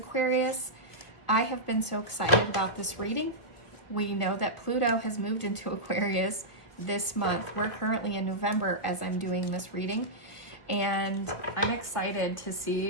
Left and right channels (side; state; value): right; late; 1.6 ms